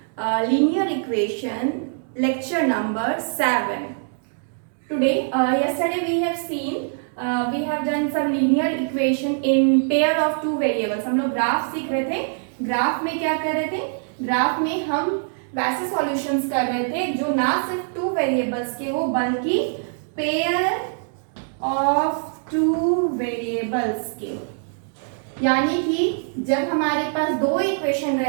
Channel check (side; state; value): left; silent; digital silence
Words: linear equation lecture number 7. Today, yesterday we have seen we have done some linear equation in pair of two variables. हम लोग graph सीख रहे थे. Graph में क्या कर रहे थे? ग्राफ में हम वैसे सॉल्यूशंस कर रहे थे जो ना सिर्फ टू वेरिएबल्स के हो बल्कि पेयर ऑफ टू वेरिएबल्स के. यानी कि जब हमारे पास दो इक्वेशन